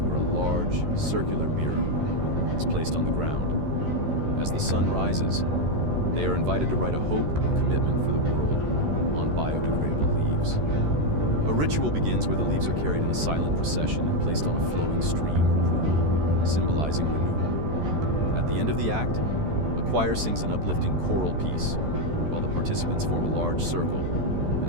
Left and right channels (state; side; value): late; left; 13 ms